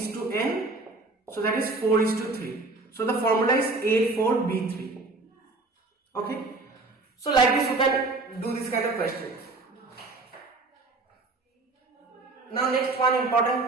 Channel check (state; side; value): quieter; left; 3.4 dB